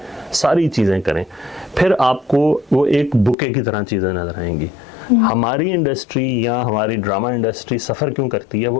सारी चीज़ें करें, फिर आपको वो एक बुके की तरह चीज़ें नजर आएंगी। हमारी इंडस्ट्री या हमारी ड्रामा इंडस्ट्री सफ़र क्यों करती है?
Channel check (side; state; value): right; drops out; at 3.4 s